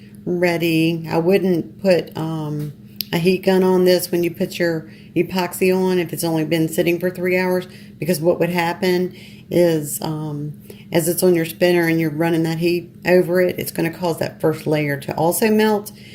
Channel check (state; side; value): identical; both; correlation 1.00